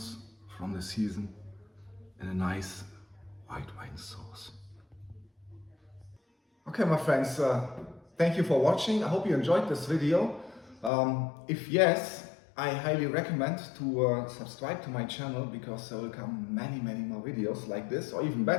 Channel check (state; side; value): drops out; right; at 10.9 s